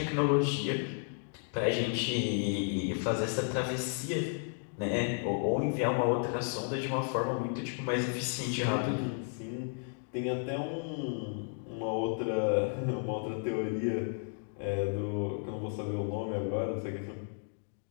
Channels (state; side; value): silent; right; 56 dB below the other